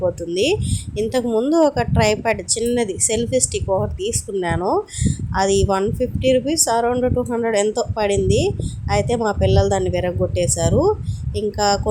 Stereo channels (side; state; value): both; identical; correlation 1.00